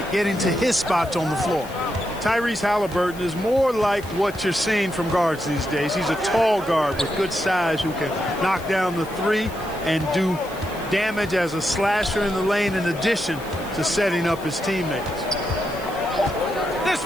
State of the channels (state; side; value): noise; left; hiss, 20 dB below the sound